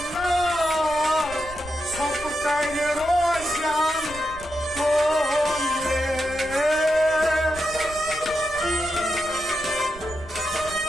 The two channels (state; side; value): noise; right; rumble, 16 dB below the sound